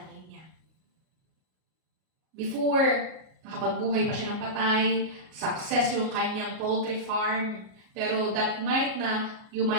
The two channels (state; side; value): late; left; 38 ms